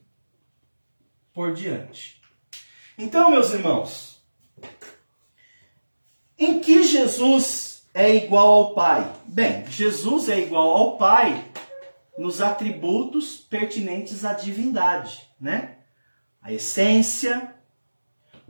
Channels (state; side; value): inverted; both; correlation -1.00